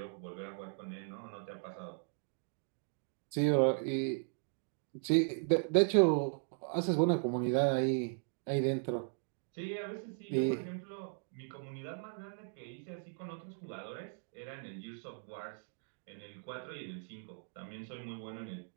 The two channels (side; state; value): left; silent; digital silence